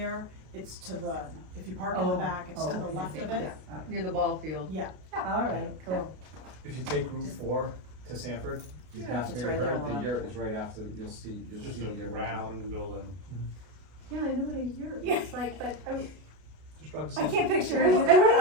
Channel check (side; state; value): left; late; 33 ms